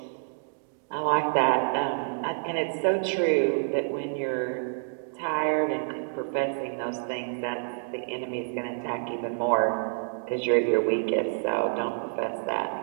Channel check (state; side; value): silent; left; digital silence